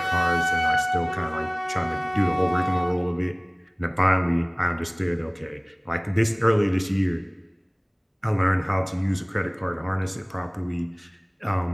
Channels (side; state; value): both; identical; correlation 1.00